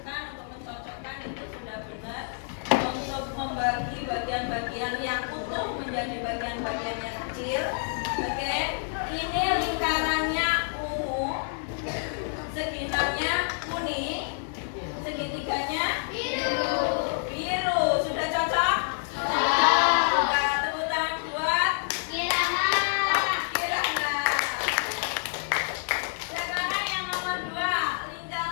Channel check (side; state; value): right; silent; digital silence